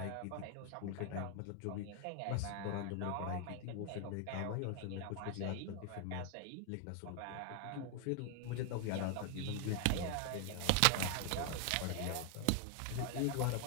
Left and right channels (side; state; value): both; different; correlation 0.00